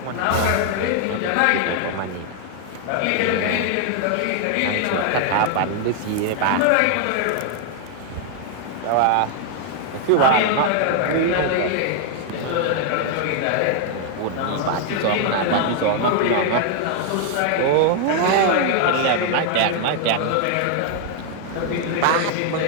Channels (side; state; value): both; different; correlation 0.00